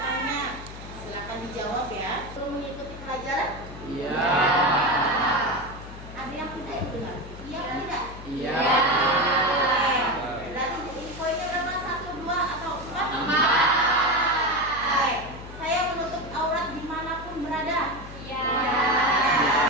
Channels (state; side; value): noise; left; hum, 14 dB below the sound